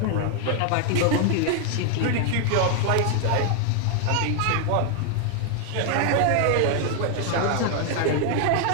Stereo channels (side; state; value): both; different; correlation 0.00